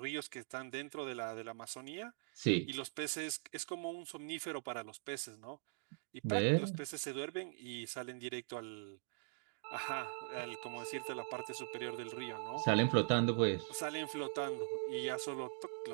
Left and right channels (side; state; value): left; silent; digital silence